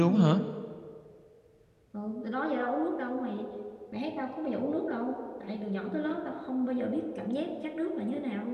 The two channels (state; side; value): identical; both; correlation 1.00